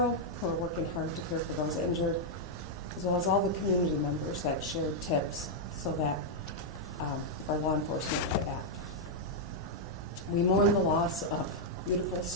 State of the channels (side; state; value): both; normal; correlation -0.03